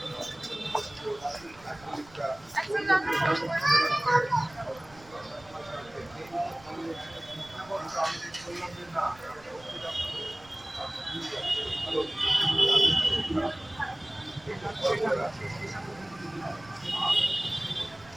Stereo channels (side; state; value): right; noise; rumble, 24 dB below the sound